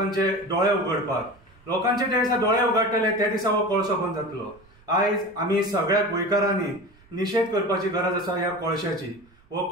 दोळे उगडपाक। लोकांचे जे दिसा दोळे उगडटले ते दिसा हो कोळसो बंद जातलो। आयज आमी सगळ्या गोंयकारांनी निशेध करपाची गरज आसा ह्या कोळशाची। हो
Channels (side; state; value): right; noise; rumble, 29 dB below the sound